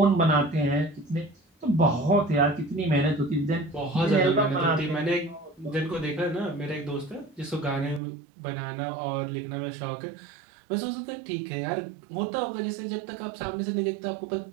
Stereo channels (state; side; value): drops out; left; at 8.0 s